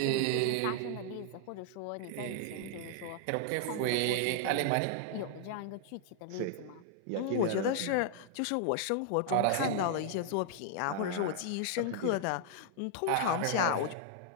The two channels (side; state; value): both; different; correlation -0.01